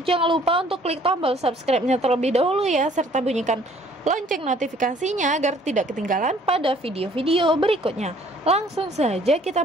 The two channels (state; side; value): normal; both; correlation 0.58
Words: jangan lupa untuk klik tombol subscribe-nya terlebih dahulu ya, serta bunyikan lonceng notifikasinya agar tidak ketinggalan pada video-video berikutnya. Langsung saja kita